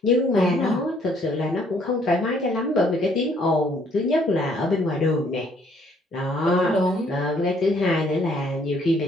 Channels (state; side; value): normal; both; correlation 0.64